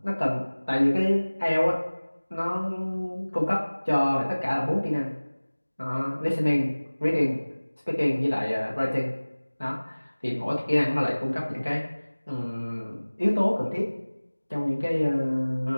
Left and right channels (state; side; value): inverted; both; correlation -1.00